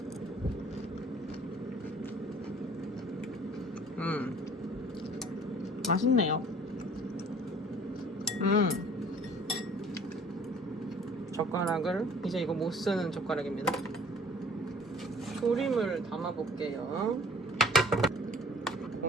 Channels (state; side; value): normal; both; correlation 0.52